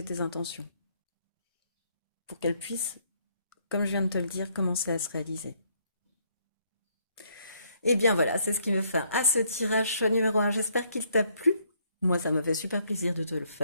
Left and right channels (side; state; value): both; inverted; correlation -0.69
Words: tes intentions. Pour qu'elle puisse, comme je viens de te le dire, commencer à se réaliser. Et bien voilà, c'est ce qui me fait à ce tirage choix numéro un. J'espère qu'il t'a plu. Moi, ça me fait super plaisir de te le